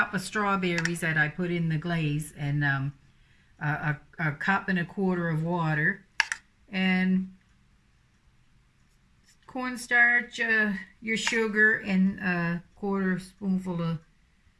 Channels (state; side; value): identical; both; correlation 1.00